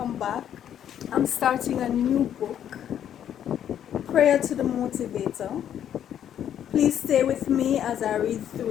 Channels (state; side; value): quieter; right; 9.9 dB